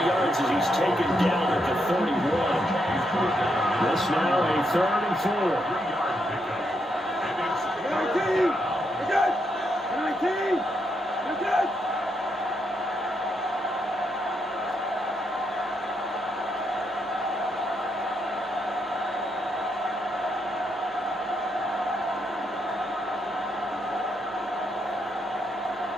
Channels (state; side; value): normal; both; correlation 0.79